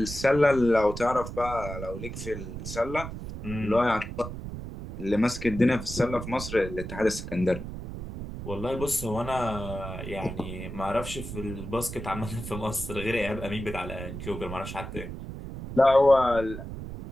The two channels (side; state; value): right; noise; rumble, 9 dB below the sound